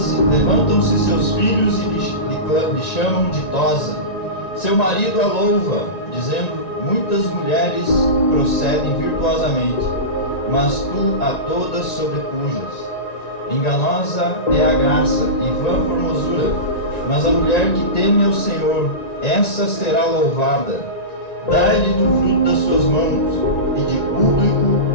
seus filhos e lhe chamam ditosa. Seu marido a louva, dizendo: muitas mulheres procedem virtuosamente, mas tu a todas sobrepujas. Enganosa é a graça e vã formosura, mas a mulher que teme ao Senhor, essa será louvada. Dai-lhe do fruto das suas mãos, e de público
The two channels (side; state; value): right; late; 1.9 ms